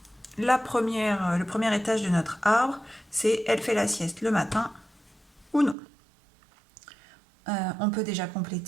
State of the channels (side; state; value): left; drops out; at 5.8 s